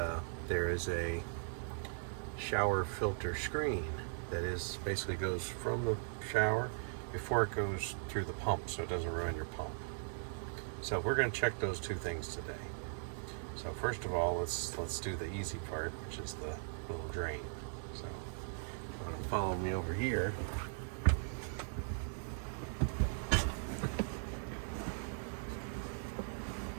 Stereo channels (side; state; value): left; silent; 52 dB below the other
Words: there is a shower filter screen that is basically goes from the shower before it goes through the pump, so it doesn't ruin your pump. So we're going to check those two things today. So first of all, let's do the easy part, which is the little drain. So you want to follow me over here.